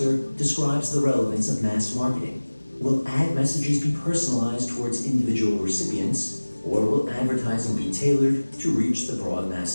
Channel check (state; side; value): inverted; both; correlation -1.00